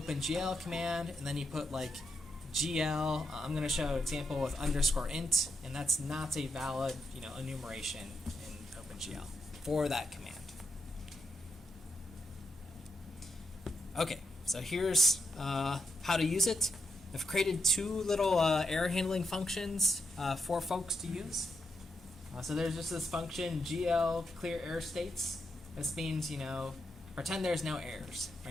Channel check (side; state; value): both; normal; correlation 0.83